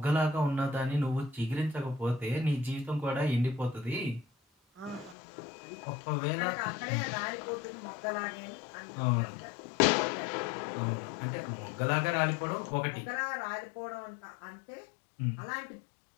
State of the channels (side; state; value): right; drops out; at 5.2 s